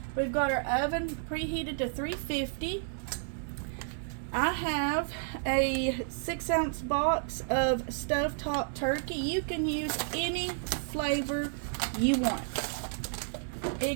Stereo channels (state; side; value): silent; left; digital silence